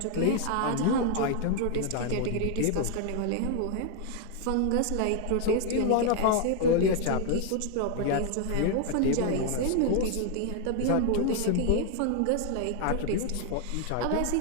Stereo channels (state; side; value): different; both; correlation 0.00